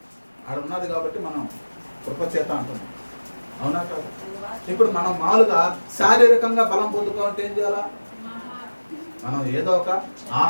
ఆడ ఉన్నది కాబట్టి మనం కృపచేత అంటున్నాం, అవునా కాదు? ఇప్పుడు మనం మామూలుగా శారీరకంగా బలం పొందుకోవాలంటే ఏం చేయాలా? మనం ఏదో ఒక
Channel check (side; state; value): both; inverted; correlation -1.00